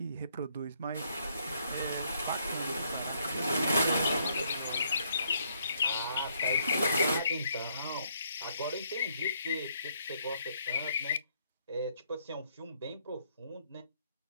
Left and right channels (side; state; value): both; inverted; correlation -0.70